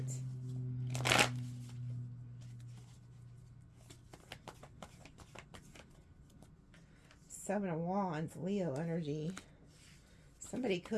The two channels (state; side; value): identical; both; correlation 1.00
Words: Seven of Wands, Leo energy. Somebody